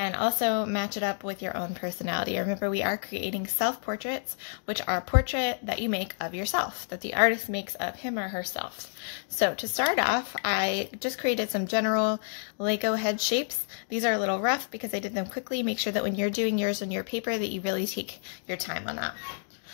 also match it up with your own personality. Remember, we are creating self-portraits, which are a portrait that you make of yourself, that the artist makes of him or herself. So to start off, I just created some general Lego head shapes. These are a little rough because I did them quickly. Make sure that when you're doing yours on your paper that you really take your time on that.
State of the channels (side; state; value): right; silent; 58 dB below the other